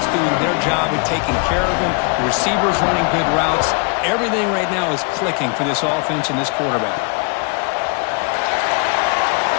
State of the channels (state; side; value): quieter; right; 34.9 dB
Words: doing their job of taking care of him, the receivers running good routes. Everything right now is clicking for this offense and this quarterback.